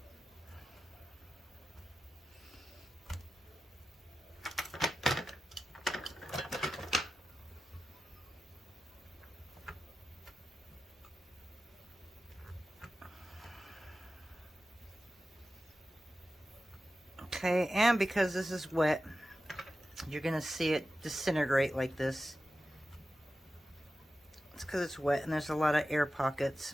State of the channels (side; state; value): both; normal; correlation 0.93